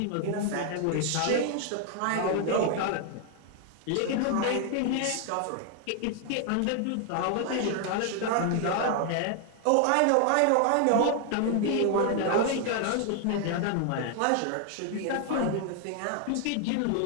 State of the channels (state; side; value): different; both; correlation 0.00